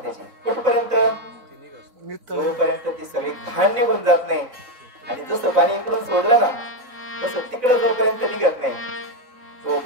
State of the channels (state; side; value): late; left; 4.0 ms